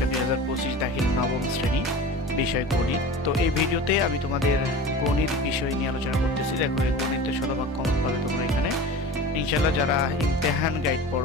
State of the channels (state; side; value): normal; both; correlation 0.35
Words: 2025 দাখিল নবম শ্রেণী বিষয় গণিত। তো এই ভিডিওতে আমি তোমাদের গণিত বিষয় নিয়ে আলোচনা করতেছি। দেখো, এই গণিতের শতভাগ কমন পাবে তোমরা এখানে ইনশাল্লাহ। যারা ইমতেহান গাইড